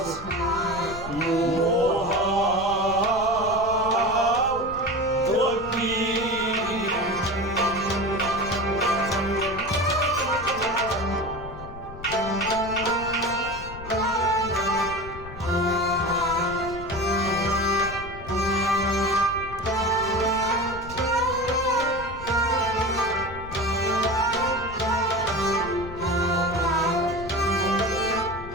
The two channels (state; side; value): noise; left; rumble, 13 dB below the sound